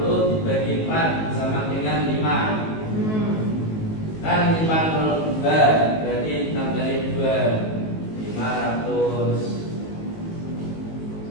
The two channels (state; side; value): late; right; 19 ms